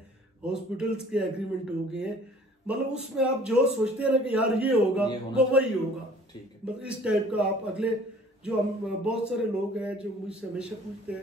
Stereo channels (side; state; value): both; normal; correlation 0.52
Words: हॉस्पिटल्स के एग्रीमेंट हो गए हैं। मतलब उसमें आप जो सोचते हैं ना कि यार ये होगा वो वही होगा। ठीक है। मतलब इस टाइप का आप अगले जो हम बहुत सारे लोग हैं जो मुझसे हमेशा पूछते